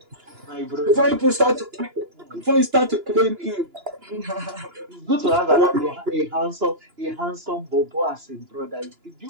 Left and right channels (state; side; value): late; left; 2.9 ms